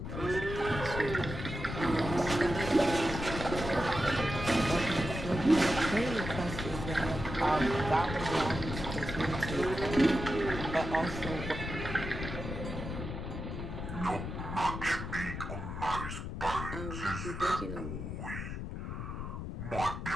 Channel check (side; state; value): left; noise; rumble, 6 dB below the sound